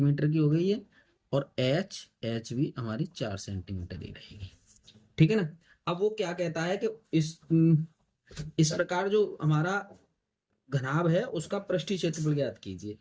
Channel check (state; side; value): identical; both; correlation 1.00